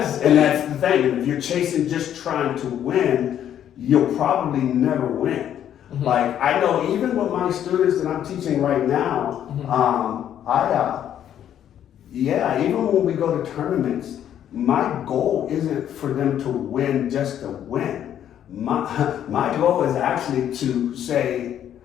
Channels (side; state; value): right; quieter; 10.3 dB